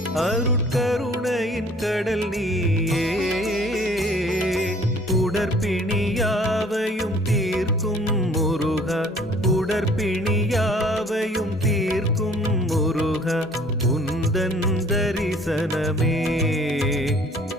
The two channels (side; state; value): both; normal; correlation 0.55